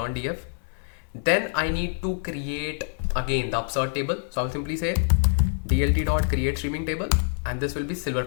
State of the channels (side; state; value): right; silent; digital silence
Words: df. Then I need to create again the upsert table. So I will simply say dlt.create streaming table, and this will be silver